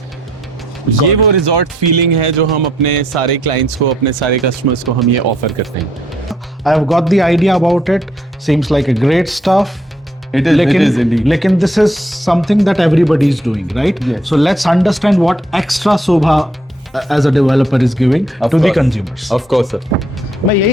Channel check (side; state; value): both; normal; correlation 0.70